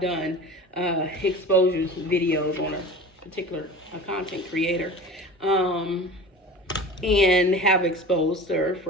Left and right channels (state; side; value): normal; both; correlation 0.36